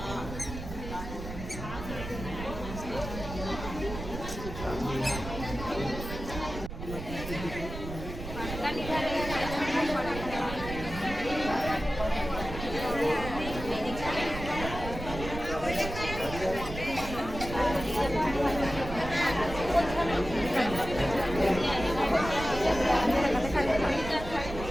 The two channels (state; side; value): noise; right; rumble, 8 dB below the sound